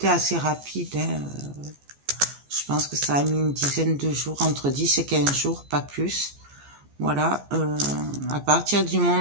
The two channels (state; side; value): late; left; 14 ms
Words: assez rapide, hein, je pense que ça a mis une dizaine de jours, entre 10 et 15 jours, pas plus. Voilà, à partir du